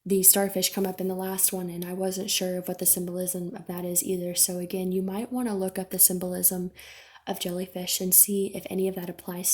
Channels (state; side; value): identical; both; correlation 1.00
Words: the starfish come up in the last one, and I wasn't sure of what the symbolism of that is either. So again, you might want to look up the symbolism of jellyfish and see if any of that applies